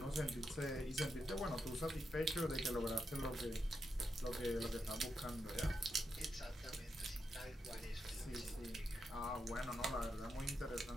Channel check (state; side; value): normal; both; correlation 0.84